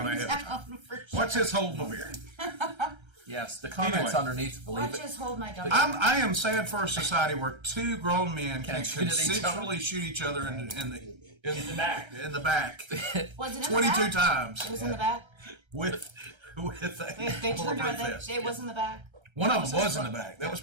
ahead of time. down for sure. What's his hold my beer? Yes, the comments Anyway. underneath, believe Watch it. this, hold my gun. I am sad for a society where two grown men can Can't shoot at each other. consensually shoot each other in the back. In the back Was it in 22 the back? times It was in the back. with They a turned bulletproof around. vest. It was in the back. One of them was in the back. That was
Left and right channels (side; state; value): left; late; 1.3 ms